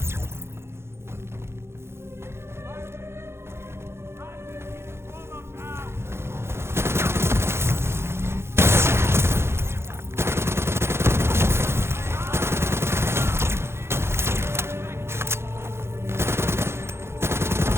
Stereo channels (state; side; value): late; left; 0.12 ms